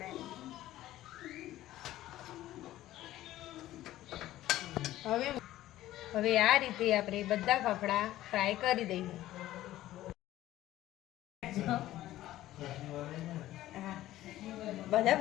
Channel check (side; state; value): right; quieter; 14.6 dB